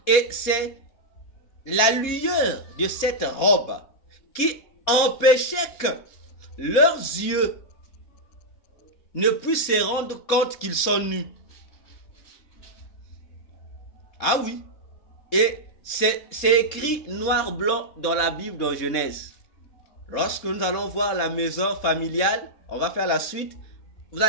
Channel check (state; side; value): late; right; 3.7 ms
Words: Et c'est la lueur de cette robe qui empêchait que leurs yeux ne puissent se rendre compte qu'ils sont nus. Ah oui. Et c'est écrit noir-blanc dans la Bible, dans Genèse. Lorsque nous allons voir la maison familiale, on va faire la suite. Vous